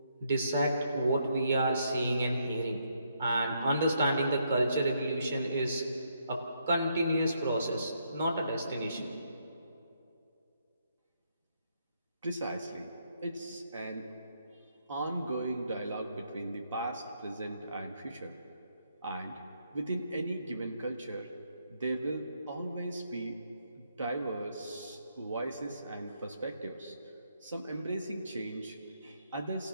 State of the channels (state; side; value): inverted; both; correlation -0.75